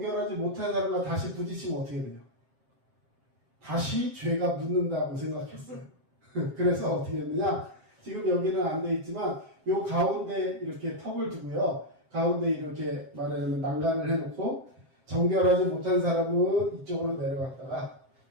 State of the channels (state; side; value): late; left; 7.5 ms